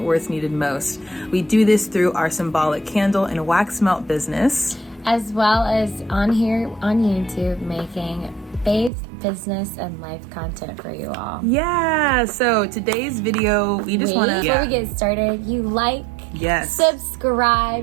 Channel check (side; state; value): left; drops out; at 8.9 s